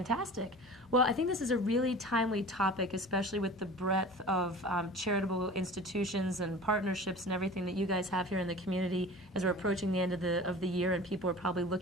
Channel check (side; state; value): left; noise; hum, 26 dB below the sound